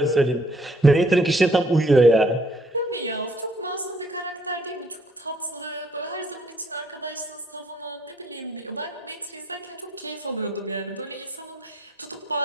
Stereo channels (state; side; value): normal; both; correlation 0.65